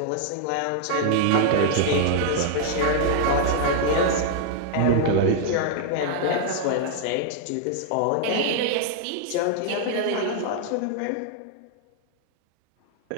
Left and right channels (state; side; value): different; both; correlation -0.01